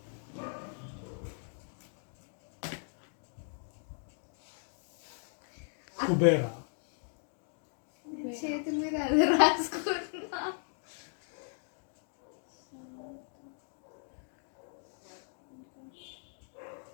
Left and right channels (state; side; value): silent; right; 53 dB below the other